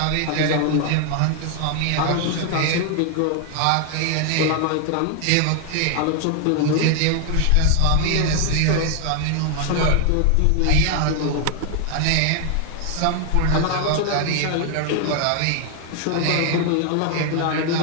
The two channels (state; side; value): different; both; correlation 0.00